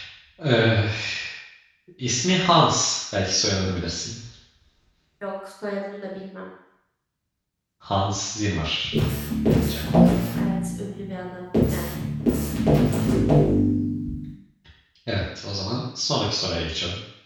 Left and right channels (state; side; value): identical; both; correlation 1.00